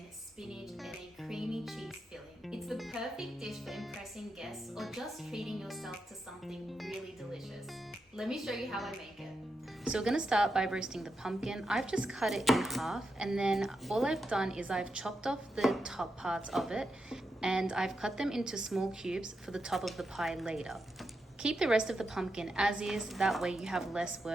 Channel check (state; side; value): normal; both; correlation 0.86